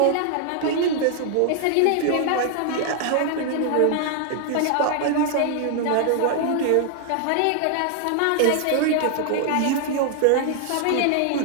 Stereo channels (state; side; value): different; both; correlation 0.00